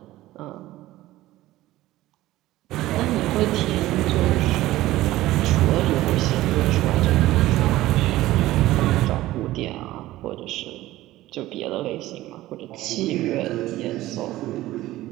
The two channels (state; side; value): quieter; left; 16.3 dB